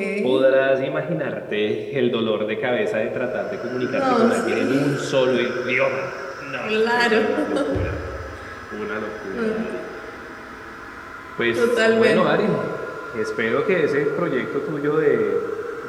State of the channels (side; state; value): both; identical; correlation 1.00